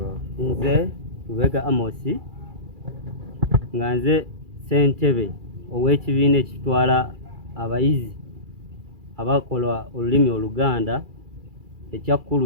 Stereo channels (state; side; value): late; left; 2.3 ms